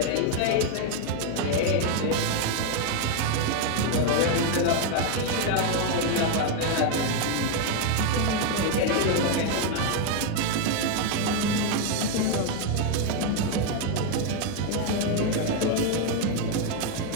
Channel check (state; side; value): different; both; correlation 0.01